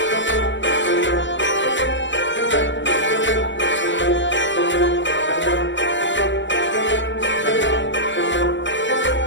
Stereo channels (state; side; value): late; right; 0.54 ms